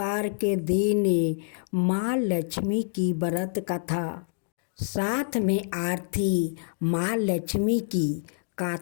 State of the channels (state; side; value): silent; right; digital silence